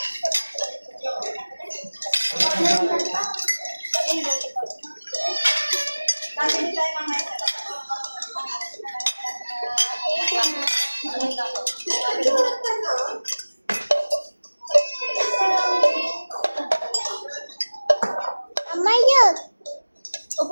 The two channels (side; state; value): both; inverted; correlation -1.00